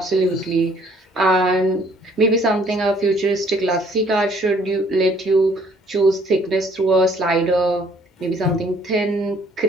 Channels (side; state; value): both; normal; correlation 0.61